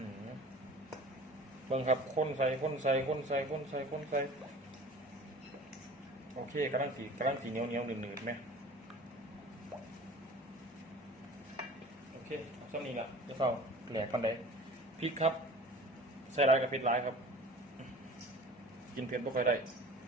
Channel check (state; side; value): normal; both; correlation 0.43